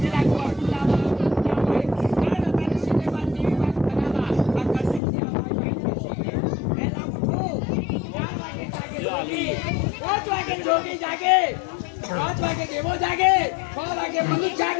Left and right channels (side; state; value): right; drops out; at 5.0 s